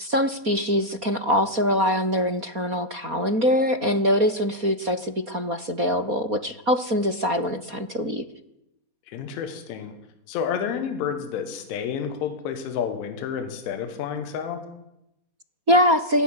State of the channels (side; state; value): left; late; 4.2 ms